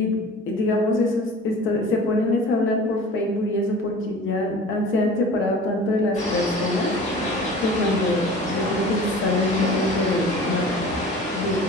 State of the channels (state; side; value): normal; both; correlation 0.42